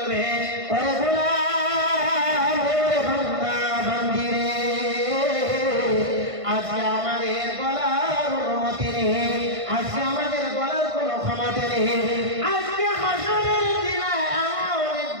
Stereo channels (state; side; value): late; left; 1.5 ms